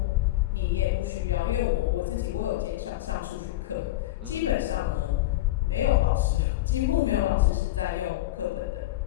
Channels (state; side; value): quieter; right; 16.5 dB